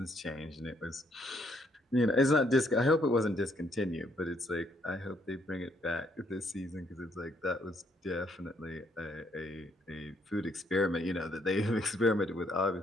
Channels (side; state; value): both; normal; correlation 0.70